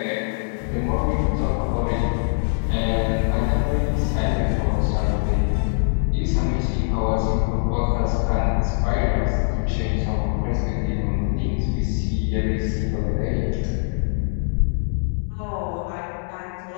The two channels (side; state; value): right; silent; 64 dB below the other